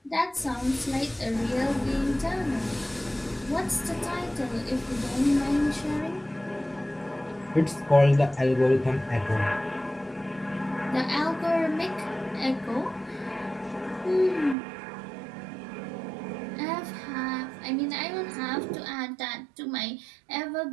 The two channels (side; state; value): left; drops out; at 14.6 s